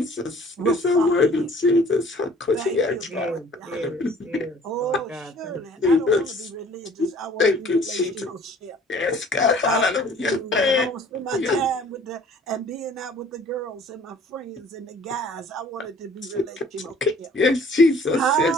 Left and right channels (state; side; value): normal; both; correlation 0.53